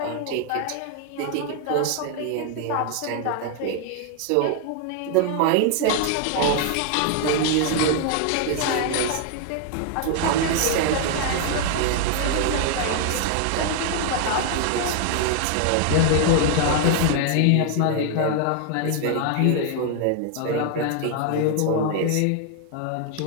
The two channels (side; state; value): both; different; correlation 0.00